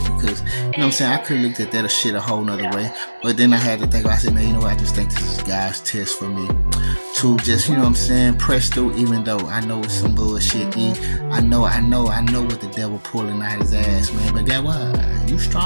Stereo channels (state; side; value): inverted; both; correlation -1.00